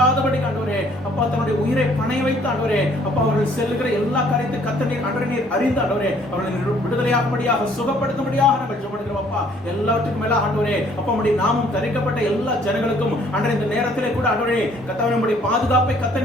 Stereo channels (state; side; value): normal; both; correlation 0.61